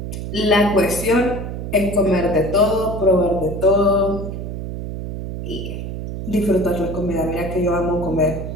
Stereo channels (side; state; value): right; noise; hum, 6 dB below the sound